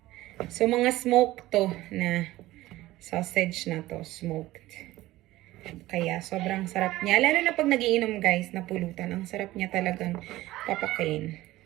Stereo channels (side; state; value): left; quieter; 17.0 dB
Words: So, mga smoked to na sausage na to. Smoked. Kaya, sobrang sarap niya. Lalo na pag nagiinom guys, na pulutan. Ang sarap niya talagang papakain.